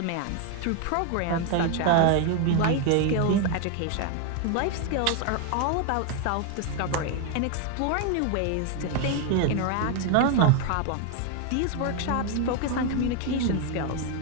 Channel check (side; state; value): both; different; correlation 0.01